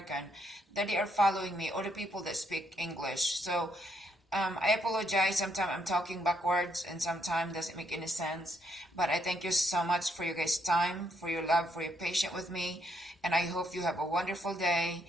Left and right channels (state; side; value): normal; both; correlation 0.74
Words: that they are following me, or the people that speak English. So I apologize, sometimes I'm talking backwards and sometimes doesn't make any sense. But I thank you so much for your guys' time, for your love, for your patience with me. And I hope you have a wonderful day.